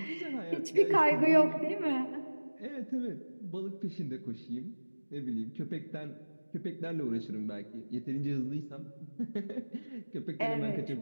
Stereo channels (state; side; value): inverted; both; correlation -1.00